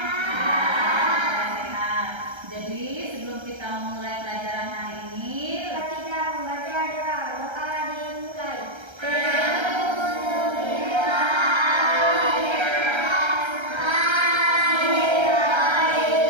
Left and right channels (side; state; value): left; late; 1.3 ms